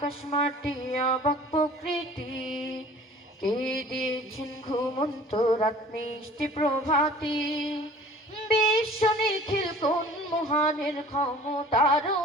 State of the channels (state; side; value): normal; both; correlation 0.47